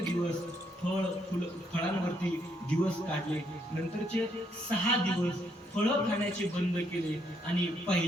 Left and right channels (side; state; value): both; normal; correlation 0.73